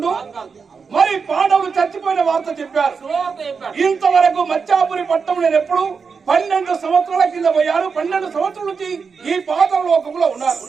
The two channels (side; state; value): left; quieter; 5.5 dB